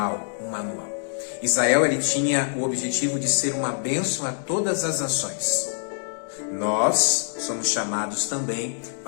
Israel ele tinha o objetivo de ser uma bênção a todas as nações. Nós somos chamados também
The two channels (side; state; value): right; silent; 62 dB below the other